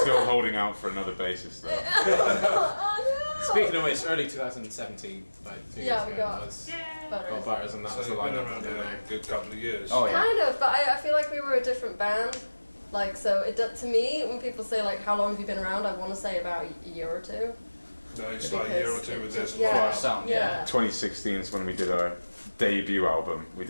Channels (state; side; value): inverted; both; correlation -1.00